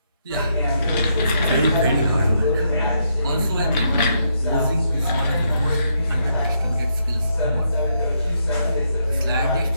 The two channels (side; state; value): both; inverted; correlation -0.77